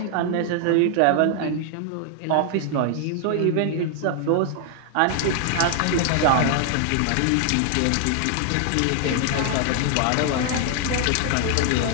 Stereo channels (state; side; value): different; both; correlation 0.00